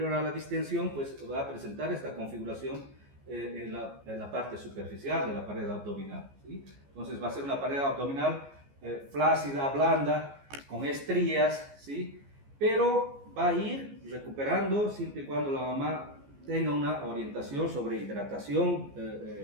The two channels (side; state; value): left; late; 14 ms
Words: a la distensión pues va a presentar esta configuración en la parte superficial de la pared abdominal, ¿sí? Entonces va a ser una pared abdominal flácida, blanda, con estrías, ¿sí? Pero va a ir recuperando siempre y cuando la mamá tenga una orientación sobre hidratación